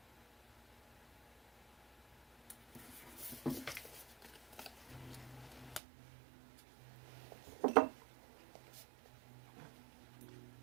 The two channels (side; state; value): left; drops out; at 5.8 s